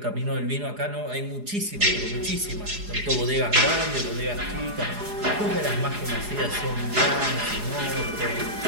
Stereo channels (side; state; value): left; late; 4.8 ms